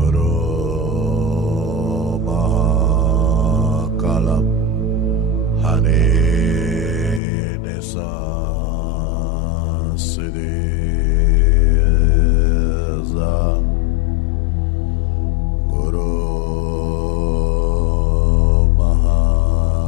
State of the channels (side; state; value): right; drops out; at 7.2 s